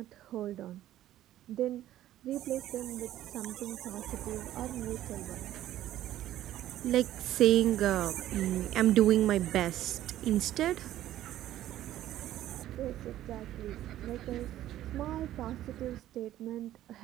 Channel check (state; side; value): quieter; left; 13.3 dB